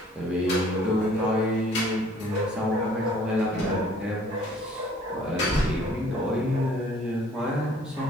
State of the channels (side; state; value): both; normal; correlation 0.56